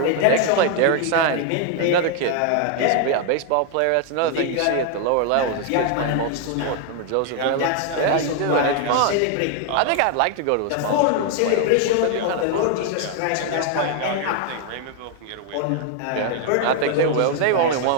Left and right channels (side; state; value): both; different; correlation 0.00